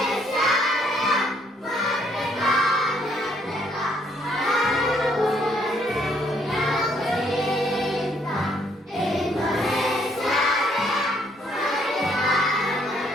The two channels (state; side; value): normal; both; correlation 0.68